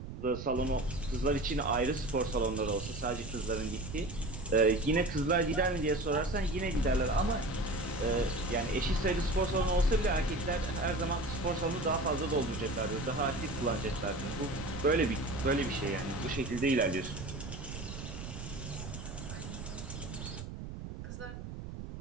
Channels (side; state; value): right; noise; rumble, 9 dB below the sound